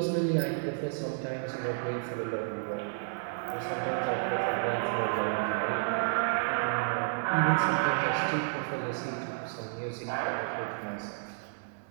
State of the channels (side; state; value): left; silent; 57 dB below the other